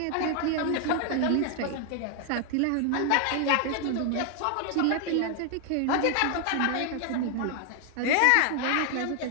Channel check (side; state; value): both; different; correlation 0.00